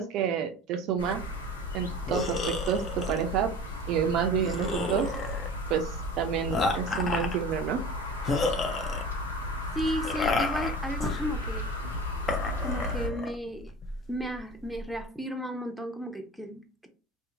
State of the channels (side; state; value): both; normal; correlation 0.37